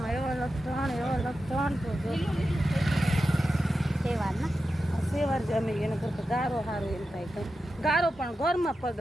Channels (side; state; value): both; normal; correlation 0.91